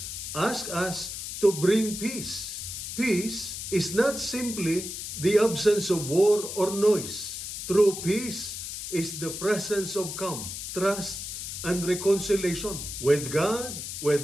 asks us to bring peace. Peace is not simply the absence of war or noise. True peace is the presence of calm, trust, and reconciliation with God,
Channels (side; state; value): left; noise; hiss, 7 dB below the sound